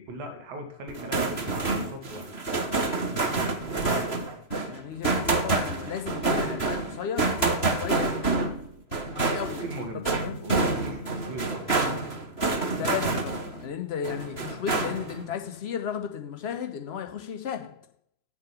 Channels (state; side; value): late; right; 3.0 ms